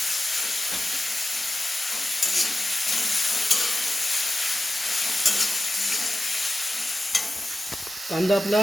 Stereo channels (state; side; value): normal; both; correlation 0.95